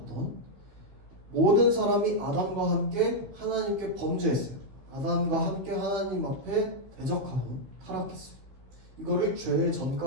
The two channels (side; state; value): left; late; 15 ms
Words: 모든 사람이 아담과 함께 하나님께 범죄했어요. 아담과 함께 하나님 앞에 대적하고 타락했어요. 이거를 죄의